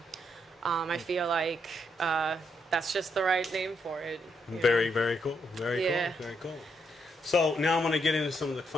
I feel like that's just the right name for it. Very, very cool. Very Yeah. cool. Very cool. So now I'm going to get into some of the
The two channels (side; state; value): both; normal; correlation 0.77